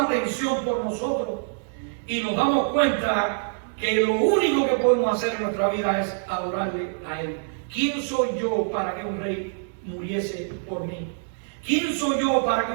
por nosotros, y nos damos cuenta que lo único que podemos hacer en nuestra vida es adorarle a Él. ¿Quién soy yo para que un rey muriese por mí? ¿Quién soy yo para que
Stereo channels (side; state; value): left; silent; digital silence